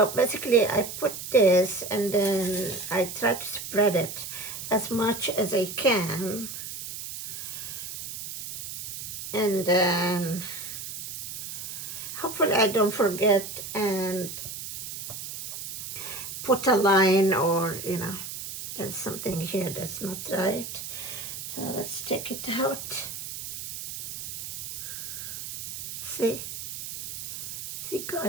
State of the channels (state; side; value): noise; right; hiss, 8 dB below the sound